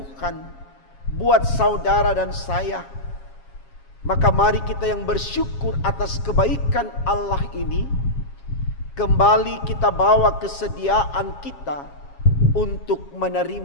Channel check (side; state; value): right; late; 7.3 ms